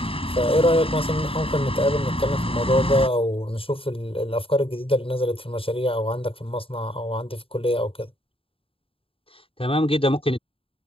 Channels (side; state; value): right; late; 0.27 ms